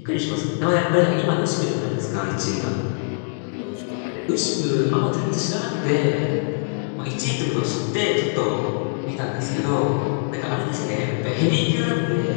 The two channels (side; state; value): right; silent; digital silence